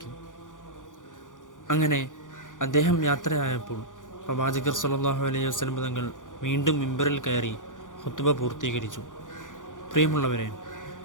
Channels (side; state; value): right; late; 0.88 ms